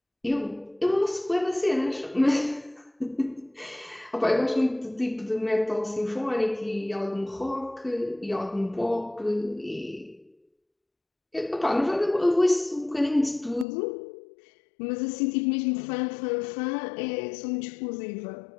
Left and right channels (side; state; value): right; drops out; at 13.7 s